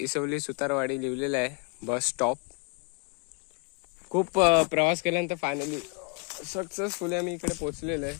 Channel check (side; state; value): right; quieter; 33.9 dB